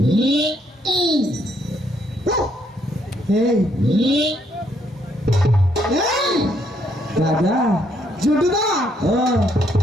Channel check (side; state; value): both; normal; correlation 0.71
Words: এই, দাদা, জুটুদা, ও